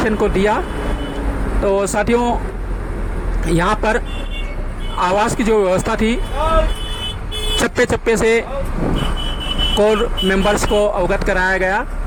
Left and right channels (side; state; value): both; identical; correlation 1.00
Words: को दिया। तो साथियों, यहाँ पर आवास की जो व्यवस्था थी, चप्पे चप्पे से कोर मेंबर्स को अवगत कराया गया